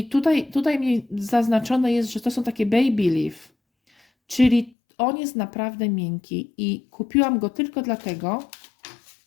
tutaj mi zaznaczone jest, że to są takie baby leaf, czyli on jest naprawdę miękki i kupiłam go tylko dlatego.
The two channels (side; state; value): right; drops out; at 4.7 s